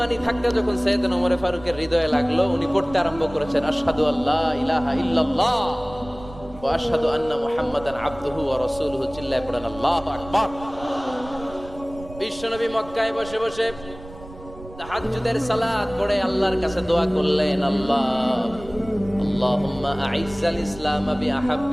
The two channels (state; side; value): noise; right; rumble, 17 dB below the sound